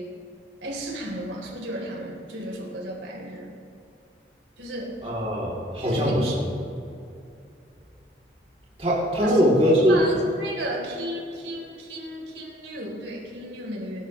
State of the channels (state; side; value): normal; both; correlation 0.55